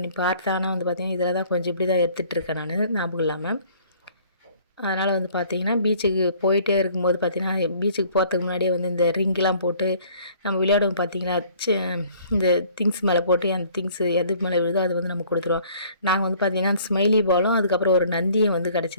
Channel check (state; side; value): inverted; both; correlation -0.55